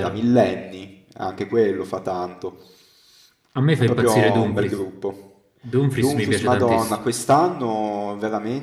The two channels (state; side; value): identical; both; correlation 1.00